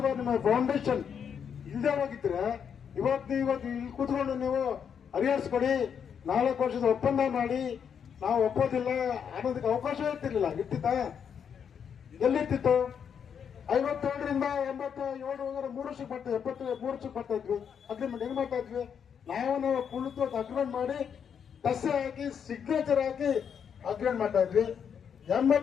ನಿಮ್ಮ ಫೌಂಡೇಶನ್ ಇಲ್ಲದೆ ಹೋಗಿದ್ರೆ ಇವತ್ತು ಇಲ್ಲಿ ಕೂತ್ಕೊಂಡು ನೀವು ಹರಿಹರಿಸ್ಕೊಡಿ, 4 ವರ್ಷದ ಒಪ್ಪಂದ ಮಾಡಿ ನಾವು ಒಪ್ಪೋದಿಲ್ಲ ಅನ್ನೋದಕ್ಕೆ ಅವಕಾಶ ಇರ್ತಿರ್ಲಿಲ್ಲ. ಇರ್ತಿತ್ತ? ಎಲ್ಲಿರ್ತಿತ್ತು? 57ರಿಂದ 87 3 ವರ್ಷಕ್ಕೆ ಬರ್ತಾ 73 ವರ್ಷಕ್ಕೆ ಬರ್ತಾ ಇದ್ವಿ. ಅಗ್ರಿಮೆಂಟ್ ಹೆಂಗ್ ಮಾಡ್ತಾ ಇದ್ವಿ? ನಾವು ಕುಳಿತು ಅಗ್ರಿಮೆಂಟ್ ಮಾಡಿ ದಸೆ ಹಾಕಿ ಸಿಗ್ನೇಚರ್ ಹಾಕಿ ಅಗ್ರಿಮೆಂಟ್ ಮಾಡ್ತಾ ಇದ್ವಿ.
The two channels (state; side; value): quieter; right; 7.5 dB